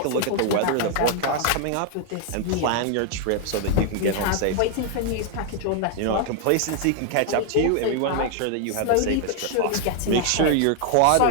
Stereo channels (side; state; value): both; different; correlation 0.00